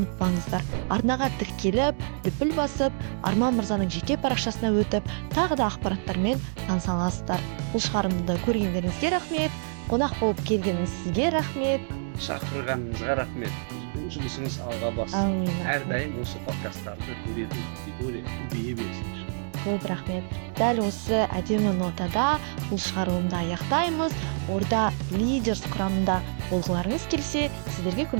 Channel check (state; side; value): silent; left; digital silence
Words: Арнаға тіркеліп, дүпіл басып, Арман мырзаның жеке парақшасына өтіп, тағы да ақпараттармен таныса аласыздар. Бұл шығарылымды көргендеріңізге рахмет, қонақ болып келгеніңіз сізге рахмет. Шақырғаныңызға рахмет. Жұмысыңыз алға бассын. Әрдайым осы подкасттарды көретін аудитория көбейе берсін. Көп рахмет. Дәл осы әдемі нотада бұл шығарылымды аяқтаймыз. Орда лидерс құрамында болғыларыңыз келсе, сіздерге